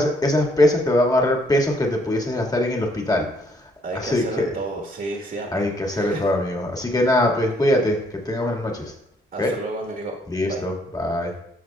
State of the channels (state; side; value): normal; both; correlation 0.68